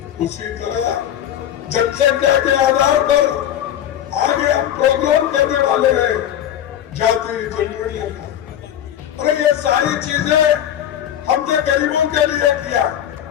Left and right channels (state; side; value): quieter; right; 10.7 dB